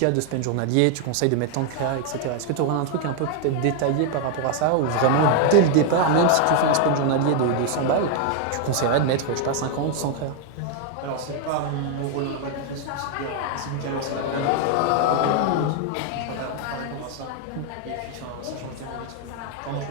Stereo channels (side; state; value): both; different; correlation 0.00